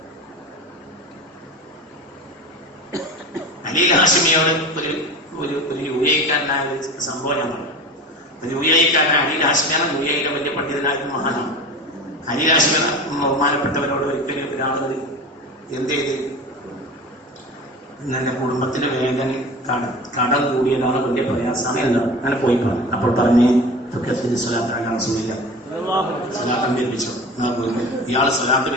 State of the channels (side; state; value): both; normal; correlation 0.34